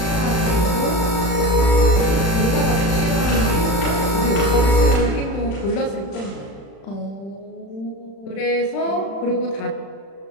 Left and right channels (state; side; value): late; right; 36 ms